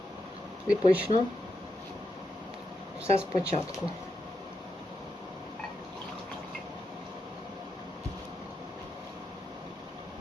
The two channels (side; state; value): both; normal; correlation 0.84